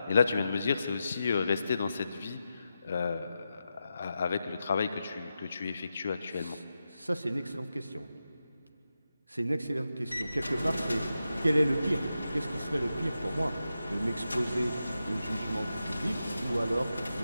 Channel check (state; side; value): inverted; both; correlation -0.89